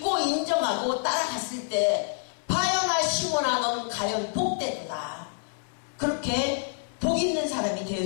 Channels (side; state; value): right; silent; 58 dB below the other